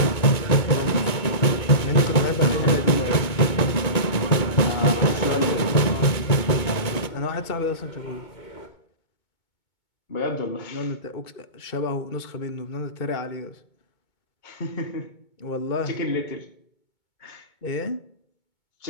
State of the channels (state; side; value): late; right; 2.2 ms